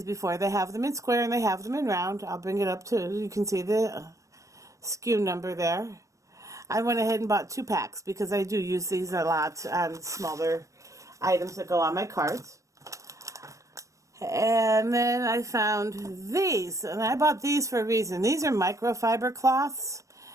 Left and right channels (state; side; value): late; left; 0.15 ms